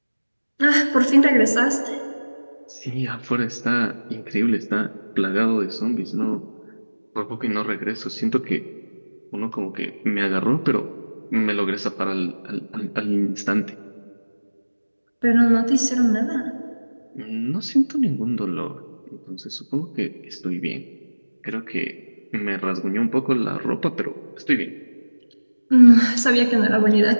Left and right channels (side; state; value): both; inverted; correlation -1.00